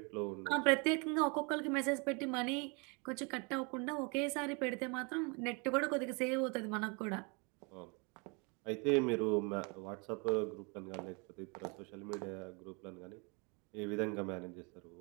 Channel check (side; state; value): left; quieter; 31.9 dB